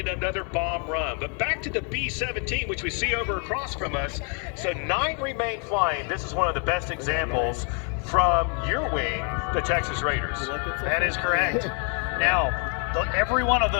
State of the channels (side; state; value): right; quieter; 39.3 dB